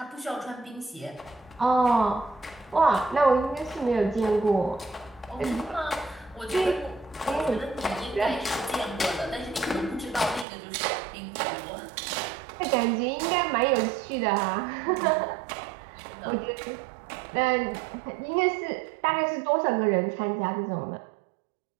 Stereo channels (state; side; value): drops out; left; at 10.5 s